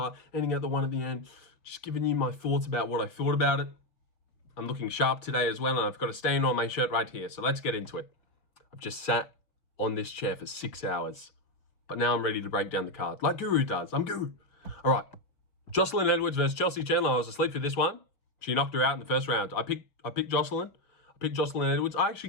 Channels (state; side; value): late; right; 5.2 ms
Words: ending at the one at the end. Just giving you my thoughts about what I thought about it. I'm looking sharp today as well, and I've got a stain on my shirt right here, so let's get into it. I've just sat on this chair for 6 hours, but now I'm ready to break down the card, like Guru does. I'm Guru. All right, Joselyne Edwards versus Chelsea Chandler. I was asleep for this one. She knocked her out in the first round. I picked Joselyne. I picked Joselyne Edwards. I